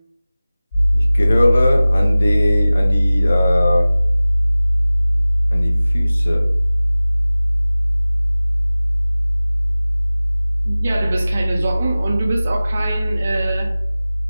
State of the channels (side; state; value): both; inverted; correlation -0.98